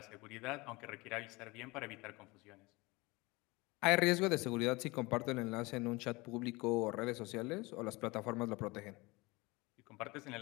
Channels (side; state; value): right; quieter; 23.9 dB